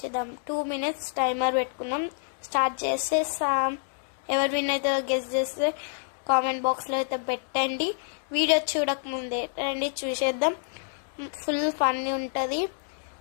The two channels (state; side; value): silent; right; digital silence